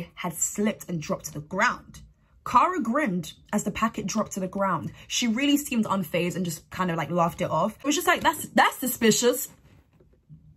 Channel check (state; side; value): identical; both; correlation 1.00